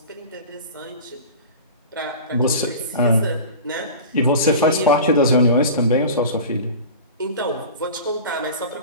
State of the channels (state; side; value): inverted; both; correlation -0.35